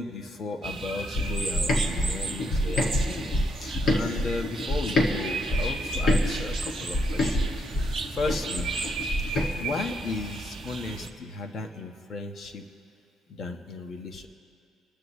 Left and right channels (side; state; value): both; normal; correlation 0.76